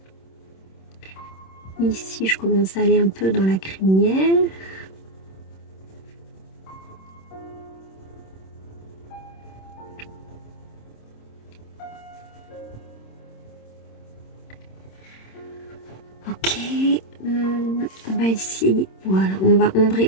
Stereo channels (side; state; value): right; late; 26 ms